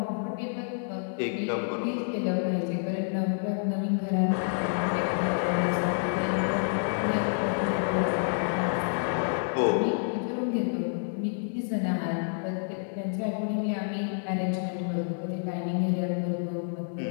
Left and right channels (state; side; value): silent; right; 59 dB below the other